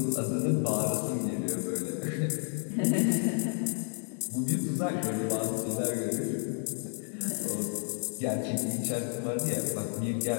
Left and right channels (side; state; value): right; silent; 57 dB below the other